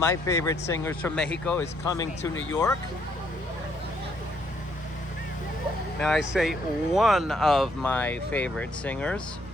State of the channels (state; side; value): normal; both; correlation 0.70